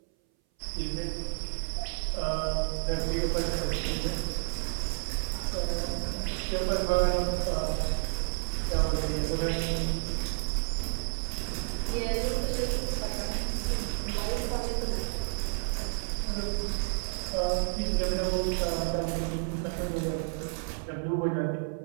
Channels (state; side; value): silent; left; 57 dB below the other